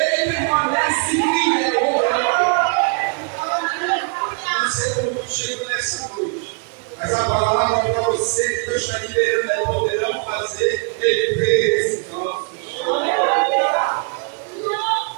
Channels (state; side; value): quieter; left; 38.4 dB